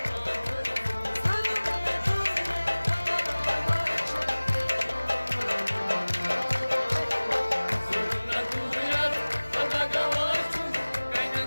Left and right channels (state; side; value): inverted; both; correlation -1.00